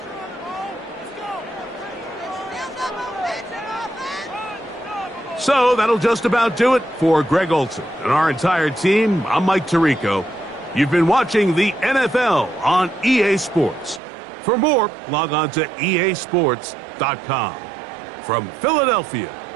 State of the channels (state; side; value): drops out; left; at 14.0 s